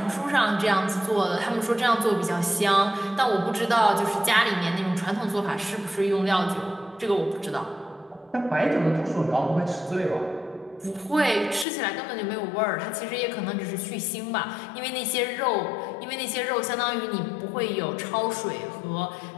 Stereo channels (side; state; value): right; drops out; at 11.7 s